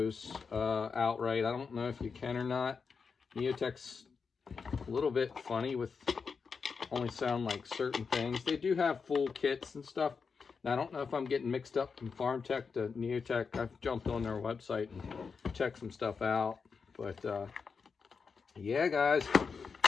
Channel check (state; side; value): quieter; right; 5.4 dB